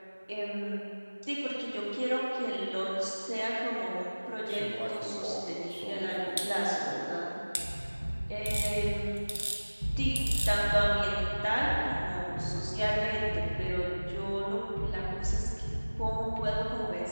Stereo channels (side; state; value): both; inverted; correlation -1.00